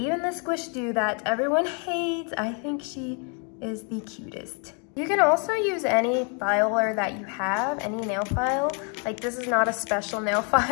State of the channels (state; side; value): quieter; right; 38.0 dB